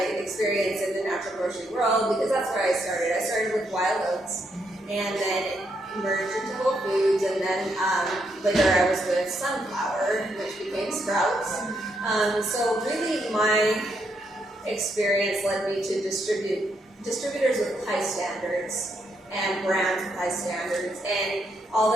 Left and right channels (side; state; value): both; normal; correlation 0.77